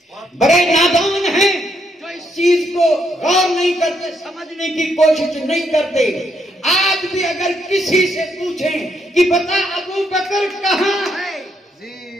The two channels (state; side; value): normal; both; correlation 0.75